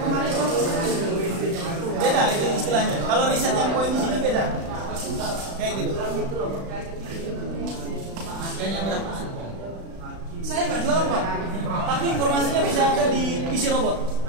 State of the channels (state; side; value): late; left; 35 ms